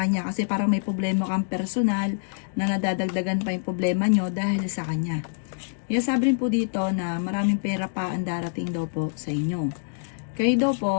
kasi parang may problema kang personal na nadadagdagan pa yung problema nyo dahil sa kanya. Sabi rin po dito na maraming pera pa ang darating daw po sa inyo. Kayo daw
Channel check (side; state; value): right; silent; digital silence